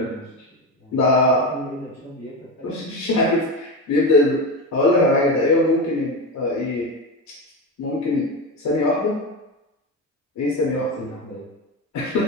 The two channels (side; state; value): both; normal; correlation 0.19